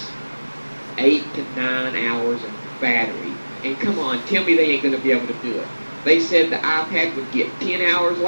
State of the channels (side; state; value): both; inverted; correlation -1.00